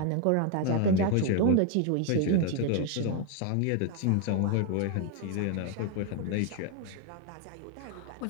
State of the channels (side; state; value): both; different; correlation 0.01